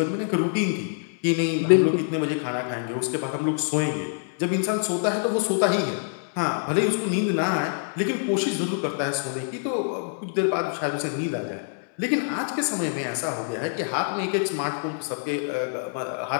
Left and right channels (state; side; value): silent; right; digital silence